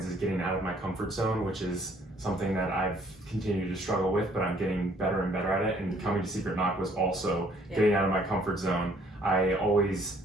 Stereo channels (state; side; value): normal; both; correlation 0.62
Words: is getting out of my comfort zone, which is something that I've continued to struggle with, but I'm getting better and better at it. And coming to Secret Knock was also getting out of my comfort zone. I always